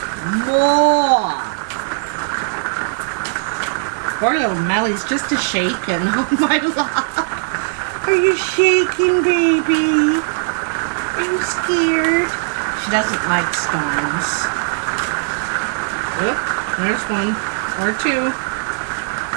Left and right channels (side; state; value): left; silent; digital silence